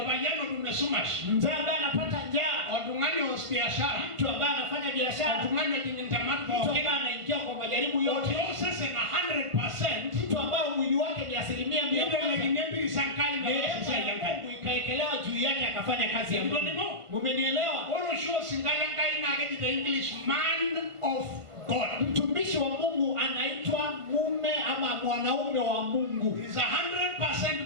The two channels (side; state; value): left; late; 1.4 ms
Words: tumesumash Mzee ambaye anapata njaa, watungani wa biashara, mtu ambaye anafanya biashara, watungani jintamatu, mtu ambaye anaingia kwa majaribu yote, sasa na 100%, mtu ambaye mwili wake ni 100%, ndio sankai na Mungu ikaekelewa juu yake akafanya kazi ya Mungu. Mmenielewa? Oro show singala kai na the English man of God. Mtumishi wa Mungu anaitwa mume ama mwanaume wa Mungu. He's 100%